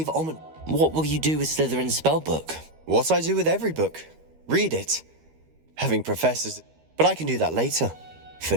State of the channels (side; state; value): left; late; 13 ms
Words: What will you do with Slytherin's spellbook? What I do with every book. Read it. Having professors. But I can do that later. For